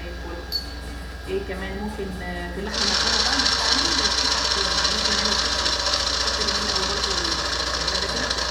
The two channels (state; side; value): identical; both; correlation 1.00